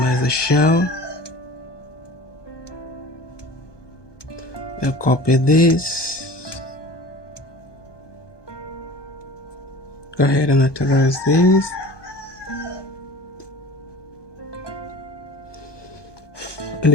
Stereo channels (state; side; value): late; right; 1.2 ms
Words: the shell. I'll copy this. Go ahead and authorize this. In